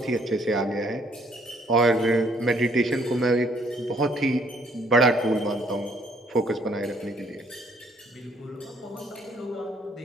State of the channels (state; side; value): normal; both; correlation 0.65